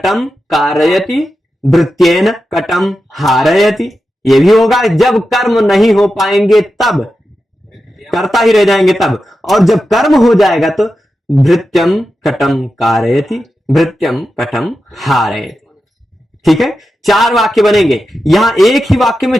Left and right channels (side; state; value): both; normal; correlation 0.90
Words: कारयति, भृत्येन कटम हारयति, ये भी होगा। जब कर्म नहीं हो पाएंगे तब, कर्ता ही रह जाएंगे तब, और जब कर्म हो जाएगा तो भृत्यम कटम कारयति, भृत्यम कटम हारयति। ठीक है, 4 वाक्य बनेंगे। यहां एक ही वाक्य में